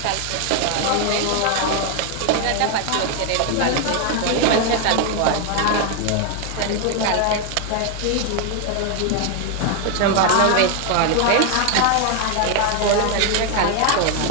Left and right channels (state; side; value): different; both; correlation 0.01